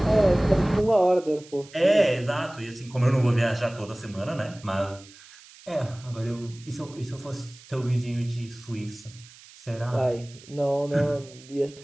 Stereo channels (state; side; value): noise; right; hiss, 22 dB below the sound